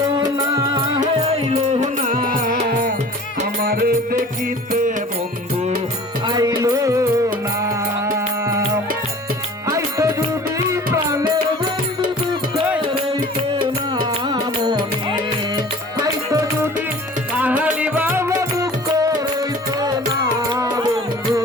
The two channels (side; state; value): both; normal; correlation 0.44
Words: না আইলো না, আমার দেখিতে বন্ধু আইলো না। আইতো যদি প্রাণের বন্ধু দুঃখ রইতো না মনে, আইতো যদি কাহালি বাবা দুঃখ রইতো না বন্ধু